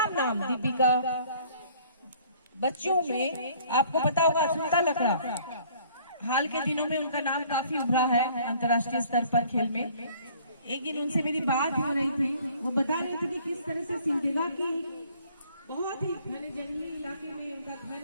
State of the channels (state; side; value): inverted; both; correlation -0.56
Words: नाम, दीपिका। बच्चों में आपको पता होगा सुनीता लकड़ा, हाल के दिनों में उनका नाम काफी उभरा है अंतर्राष्ट्रीय स्तर पर खेल में। एक दिन उनसे मेरी बात हो रही थी, वो बता रहे थे कि किस तरह से सिमडेगा की बहुत ही घने जंगली इलाके में उनका घर